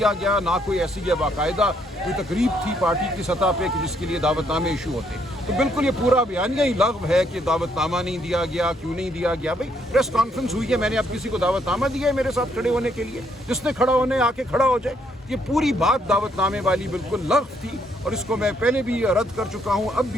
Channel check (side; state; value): both; normal; correlation 0.71